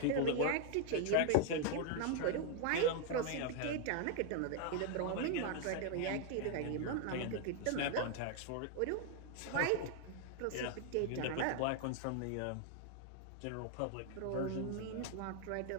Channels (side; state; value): both; different; correlation 0.00